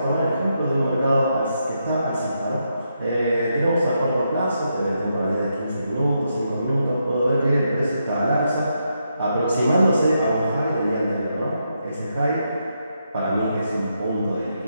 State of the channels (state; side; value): inverted; both; correlation -0.82